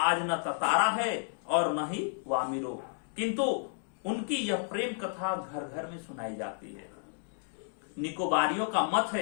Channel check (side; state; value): right; silent; digital silence